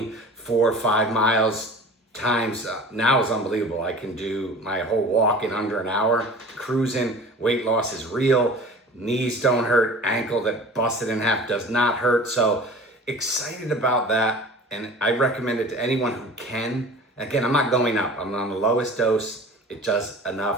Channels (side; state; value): both; normal; correlation 0.41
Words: 4 or 5 miles times. Now is unbelievable. I can do my whole walk in under an hour. Cruising. Weight loss is real. Knees don't hurt, ankle that busted in half does not hurt. So excited about that. And I recommend it to anyone who can. Again, I'm not going up. I'm on the lowest dose. It does